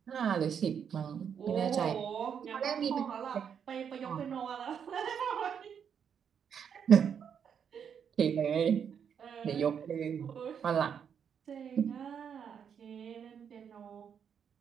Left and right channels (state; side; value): quieter; left; 7.6 dB